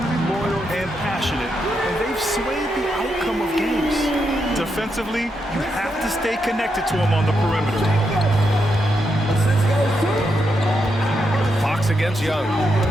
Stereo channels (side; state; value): both; normal; correlation 0.82